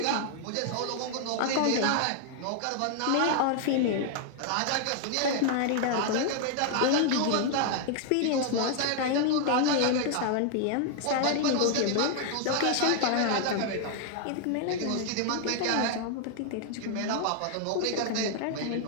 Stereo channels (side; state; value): both; different; correlation 0.00